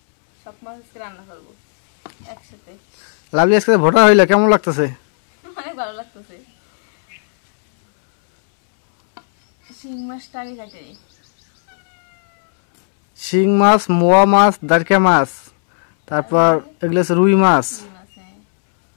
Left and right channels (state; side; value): silent; right; 69 dB below the other